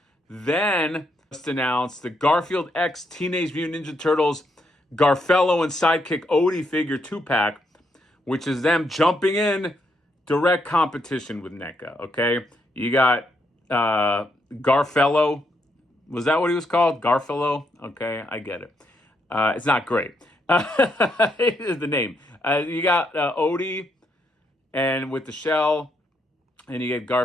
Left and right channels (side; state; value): both; normal; correlation 0.77